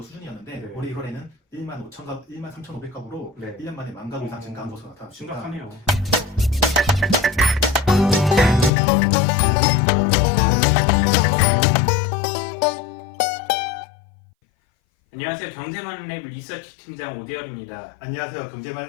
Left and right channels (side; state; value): right; drops out; at 8.7 s